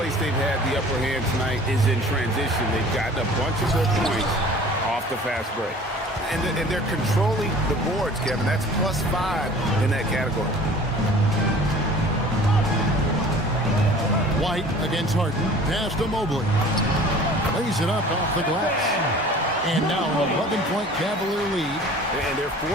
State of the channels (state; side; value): normal; both; correlation 0.46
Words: they've had the upper hand tonight is in transition. They've gotten a bunch of their points off the fast break. And they're controlling the boards, Kevin. That's +5 in that category. White against Harden. Pass to Mobley. Lays it up off the glass. And now an 11-point Cavalier lead. And they're